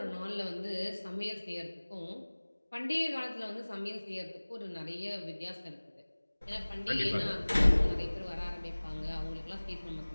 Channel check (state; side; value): inverted; both; correlation -1.00